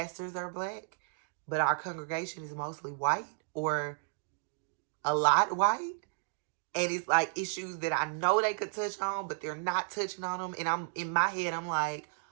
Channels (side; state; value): left; silent; 56 dB below the other